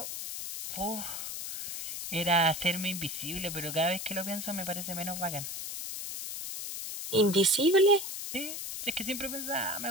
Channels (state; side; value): noise; left; hiss, 6 dB below the sound